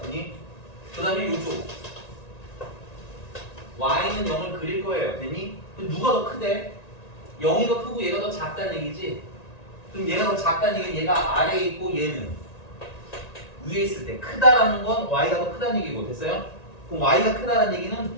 됐니? 그 다음에 이쪽 y는 0을 그릴 거예요. 됐니? 그럼 누가 더 크대? 0이 더 크고 얘가 더 작다는 얘기지? 그럼 얘가 더 작다는 얘기는 얘가 아래에 있고 얘는 위에 있을 때 크다라는 건 y가 더 크다는 얘기고. 됐어요? 그럼 y가 크다는 얘기는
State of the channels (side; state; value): right; late; 1.9 ms